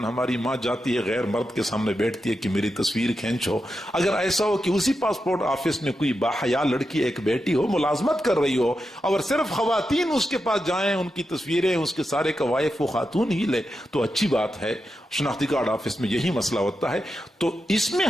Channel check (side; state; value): both; normal; correlation 0.88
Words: ہماری ماں جاتی ہے، غیر مرد کے سامنے بیٹھتی ہے کہ میری تصویر کھینچو، اگر ایسا ہو کہ اسی پاسپورٹ آفس میں کوئی باحیا لڑکی ایک بیٹی ہو، ملازمت کر رہی ہو، اور صرف خواتین اس کے پاس جائیں، ان کی تصویریں، اس کے سارے قوائف وہ خاتون ہی لے، تو اچھی بات ہے. شناختی کارڈ آفس میں یہی مسئلہ ہوتا ہے، تو اس میں